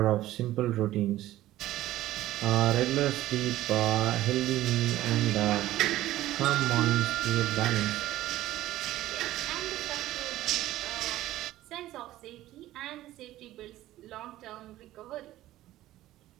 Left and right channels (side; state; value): left; quieter; 15.0 dB